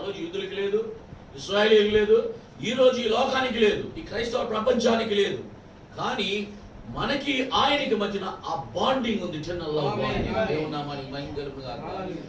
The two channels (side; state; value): both; identical; correlation 1.00